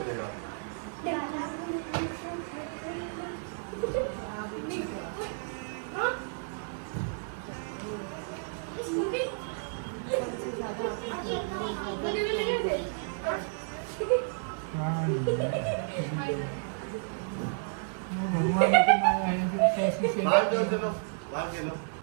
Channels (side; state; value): left; silent; digital silence